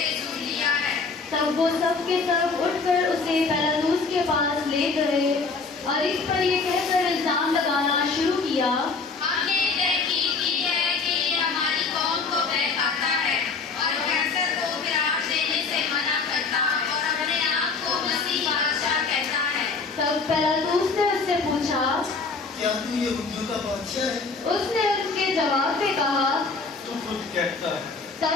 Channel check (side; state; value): right; quieter; 4.4 dB